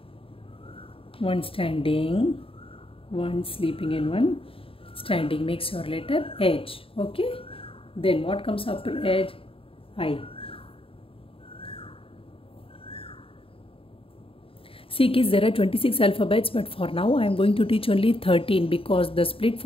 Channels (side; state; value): right; late; 0.27 ms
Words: one standing, one sleeping and one standing, makes your letter H. Okay, then what comes after H? I. See kids, there are 26 alphabets, but for now I am going to teach only 13 because the split